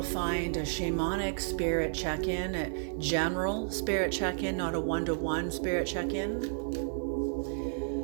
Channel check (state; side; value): silent; left; digital silence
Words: find a shamanic spirit check-in, a general spirit check-in, not a one-to-one spirit check-in.